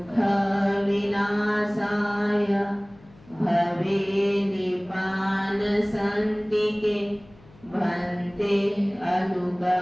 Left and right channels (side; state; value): left; noise; hum, 25 dB below the sound